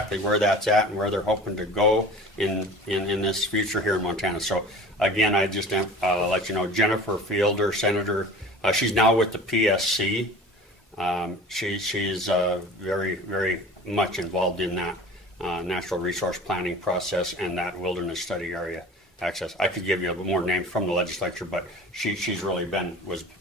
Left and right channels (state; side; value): normal; both; correlation 0.40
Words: where that's at and where they're hoping to go in this future here in Montana. So again, I just let you know, Jennifer Fielder, Senator, she's now with the PSC. She's very, very much involved in that natural resource planning process and that wilderness study area access. I could give you more names from the legislature, but she's really was